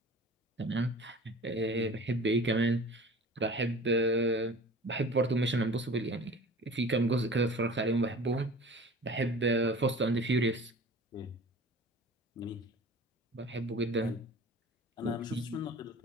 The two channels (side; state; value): both; normal; correlation 0.41